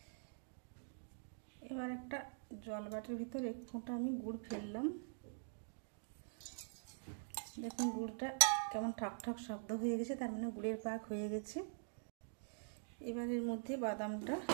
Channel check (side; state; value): left; silent; digital silence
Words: এবার একটা জল বাটির ভিতর 1 ফোঁটা আমি গুড় ফেললাম। দেখুন গুড়টা কেমন ঠাক ঠাক শব্দ হয়ে গেছে, তার মানে গুড়ের পাক হয়ে গেছে। এবার এর মধ্যে বাদামটা